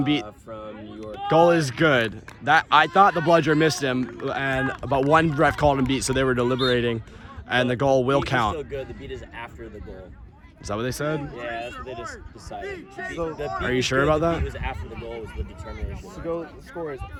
beat. From New York. Goal is good. That I thought the bludger missed him, but one ref called him beat, so they were deliberating, and the goal will Beat is count. still good. The beat is after the goal. Is that what they said? Yeah, that's what they just decided. So- The beat Are you was sure good, about the that? beat was after the goal was the determination. The score is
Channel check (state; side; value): identical; both; correlation 1.00